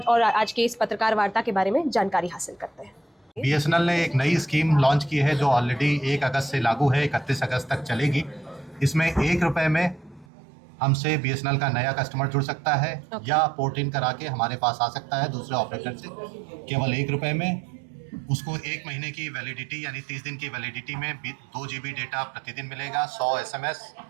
आज के इस पत्रकार वार्ता के बारे में जानकारी हासिल करते हैं। बीएसएनएल ने एक नई स्कीम लॉन्च की है जो ऑलरेडी 1 अगस्त से लागू है, 31 अगस्त तक चलेगी। इसमें ₹1 में हमसे बीएसएनएल का नया कस्टमर जुड़ सकता है या पोर्ट इन करा के हमारे पास आ सकता है दूसरे ऑपरेटर से। केवल ₹1 में उसको 1 महीने की वैलिडिटी यानी 30 दिन की वैलिडिटी में 2 GB डेटा प्रतिदिन मिलेगा, 100 SMS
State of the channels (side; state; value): left; drops out; at 10.2 s